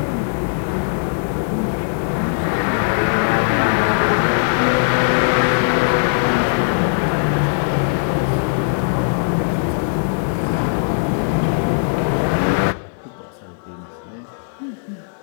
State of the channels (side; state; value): right; silent; digital silence